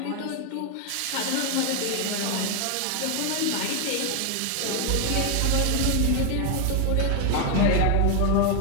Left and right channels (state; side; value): different; both; correlation 0.01